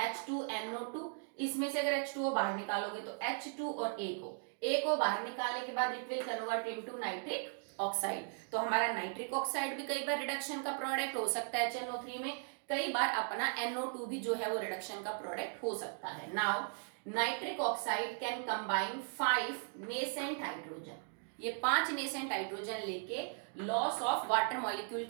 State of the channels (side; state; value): left; silent; 53 dB below the other